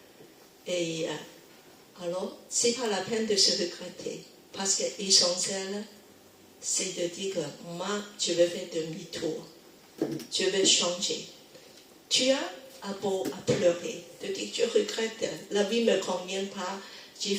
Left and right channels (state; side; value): identical; both; correlation 1.00